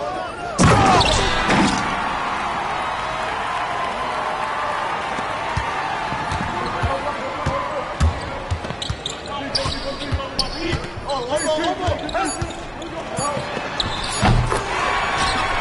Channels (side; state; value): both; identical; correlation 1.00